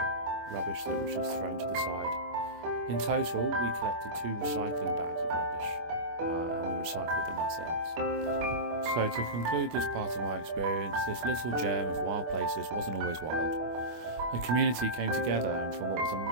that was just thrown to the side. In total, we collected 2 recycling bags of rubbish, and we recycled them ourselves. So to conclude this part of my experience, this little gem of wild places wasn't always wild. A community came together and from what was a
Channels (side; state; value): left; late; 25 ms